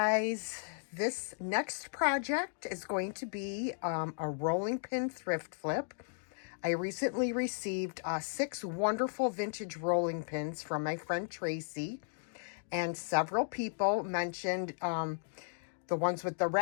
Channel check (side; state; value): right; silent; digital silence